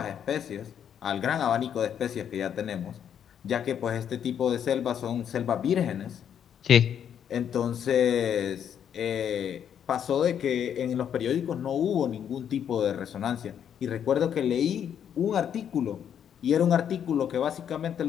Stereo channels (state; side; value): quieter; right; 8.9 dB